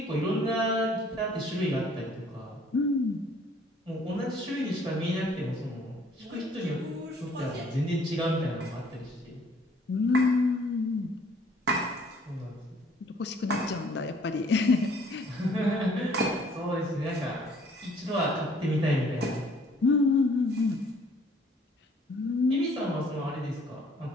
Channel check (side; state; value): both; normal; correlation 0.59